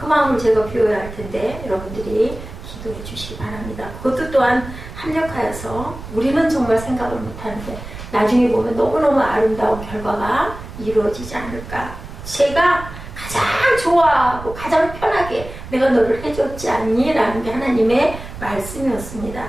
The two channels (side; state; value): right; noise; rumble, 12 dB below the sound